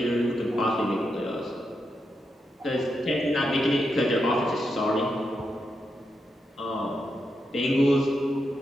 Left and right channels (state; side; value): normal; both; correlation 0.85